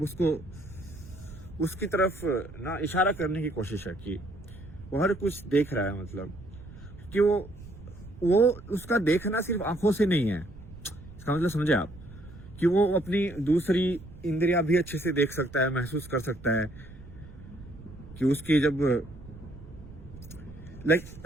उसको उसकी तरफ ना इशारा करने की कोशिश है कि वो हर कुछ देख रहा है। मतलब कि वो उसका देखना सिर्फ आंखों से नहीं है, इसका मतलब समझे आप, कि वो अपनी दूसरी इंद्रियां भी अच्छे से देख सकता है, महसूस कर सकता है। कि उसकी जब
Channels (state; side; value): noise; right; rumble, 17 dB below the sound